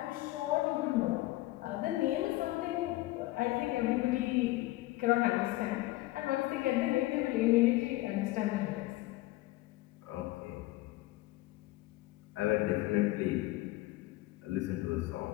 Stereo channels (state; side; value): quieter; right; 18.5 dB